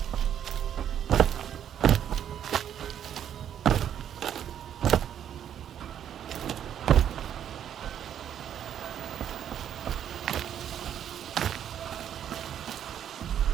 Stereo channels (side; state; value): left; quieter; 9.6 dB